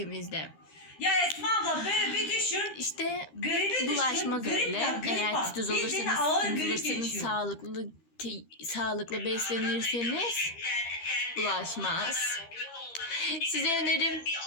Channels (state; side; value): late; right; 13 ms